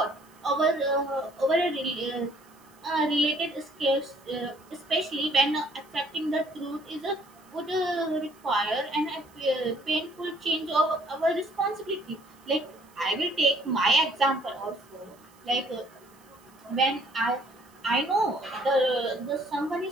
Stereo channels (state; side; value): noise; right; hiss, 29 dB below the sound